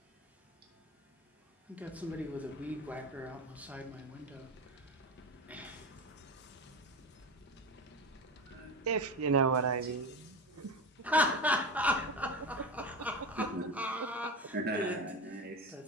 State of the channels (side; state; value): both; normal; correlation 0.25